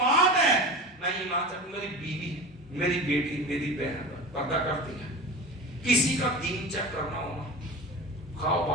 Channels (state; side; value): normal; both; correlation 0.31